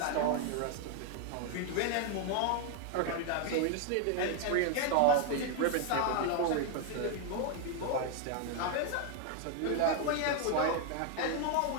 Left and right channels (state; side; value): different; both; correlation 0.00